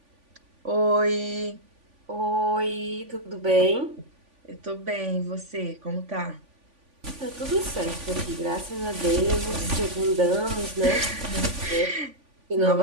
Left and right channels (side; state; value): left; late; 3.5 ms